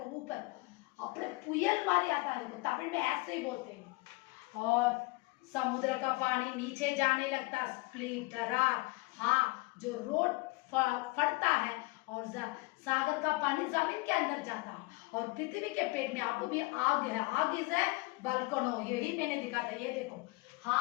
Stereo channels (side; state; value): right; quieter; 24.4 dB